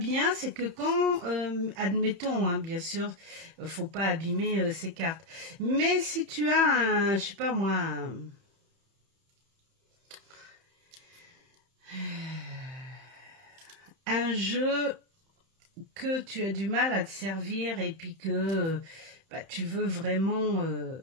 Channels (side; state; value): left; late; 31 ms